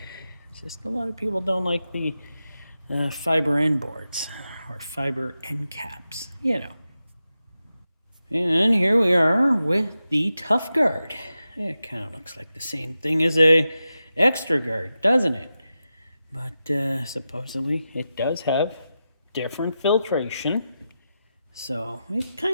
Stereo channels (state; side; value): inverted; both; correlation -0.91